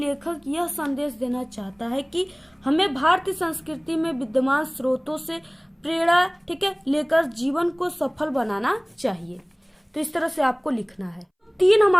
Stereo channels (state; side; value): identical; both; correlation 1.00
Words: यह संदेश देना चाहता है कि हमें भारतीय संस्कृति में विद्यमान स्रोतों से प्रेरणा, ठीक है, लेकर जीवन को सफल बनाना चाहिए। तो इस तरह से आपको लिखना है। 3 हम